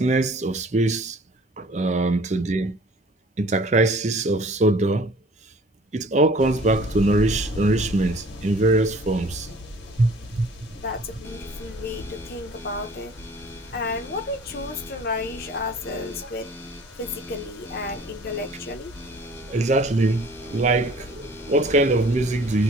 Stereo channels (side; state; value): both; normal; correlation 0.50